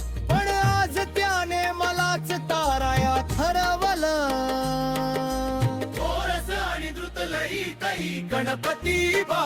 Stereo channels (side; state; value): both; identical; correlation 1.00